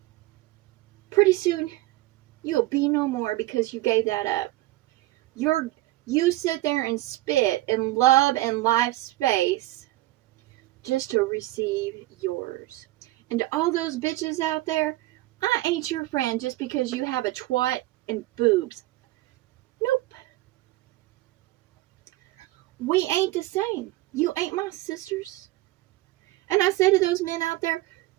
pretty soon you'll be no more because you gave that up. You sit there and spit in love and life space just to receive yours. And to all those bitches out there, I ain't your friend just because you have a twat and boobs. Nope. We ain't the same. You ain't my sisters. And I say to those men out there,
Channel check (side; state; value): left; quieter; 17.7 dB